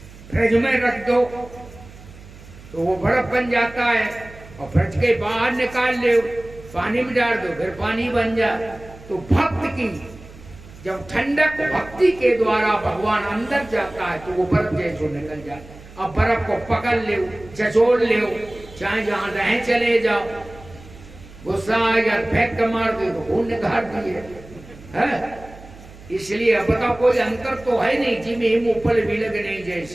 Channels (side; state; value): right; noise; hum, 19 dB below the sound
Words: फ्रिज में रख दो तो वो बर्फ बन जाता है, और फ्रिज के बाहर निकाल ले, पानी में डाल दो फिर पानी बन जाए। तो भक्त की जब ठंडक भक्ति के द्वारा भगवान अंदर जाता है तो वो बर्फ जैसो निकल जाता है। अब बर्फ को पकड़ ले, चचोड़ ले, चाहे जहां रहे चले जाओ, गुस्सा आ गया फेंक के मार दो, खून निकाल दिए है। इसलिए अब बताओ कोई अंतर तो है नहीं, जिम हिम ऊपर बिलग नहीं